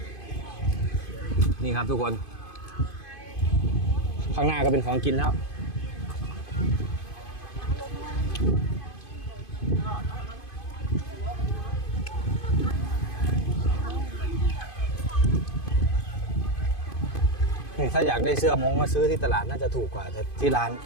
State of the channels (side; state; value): right; late; 2.5 ms